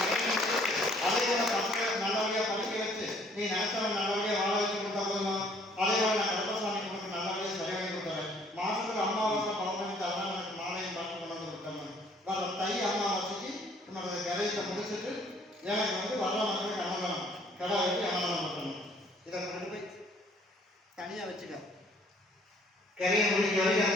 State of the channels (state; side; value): normal; both; correlation 0.60